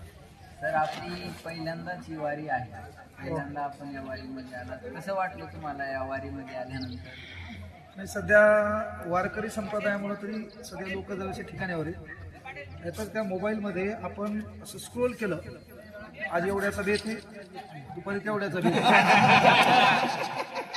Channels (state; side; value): identical; both; correlation 1.00